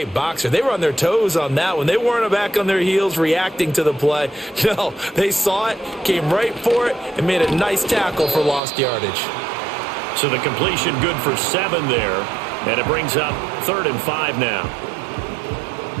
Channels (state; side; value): drops out; left; at 8.6 s